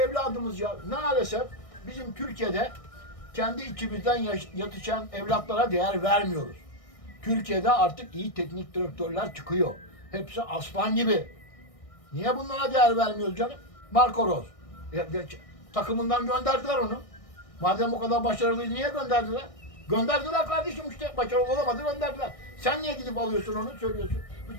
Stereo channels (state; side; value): late; right; 1.6 ms